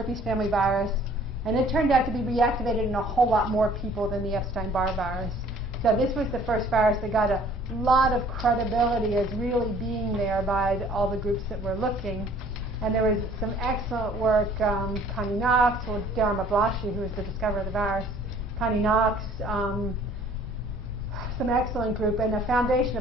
family virus. And it turned out to be reactivated in a whole lot more people than the Epstein-Barr virus. So this was the first virus that got a lot of credibility as really being there by all the groups that were looking. And there was some excellent work, Connie Knox, or Darren Mablashi, who was the discoverer of the virus, Connie Knox, some excellent group, and a foundation,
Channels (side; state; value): both; normal; correlation 0.55